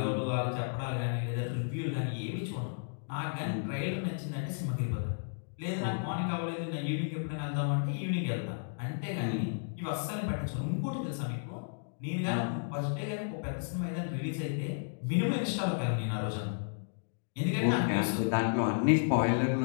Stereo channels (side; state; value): right; silent; digital silence